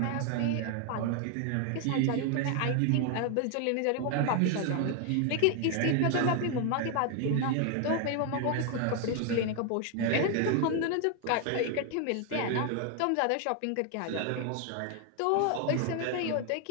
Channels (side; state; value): both; different; correlation 0.00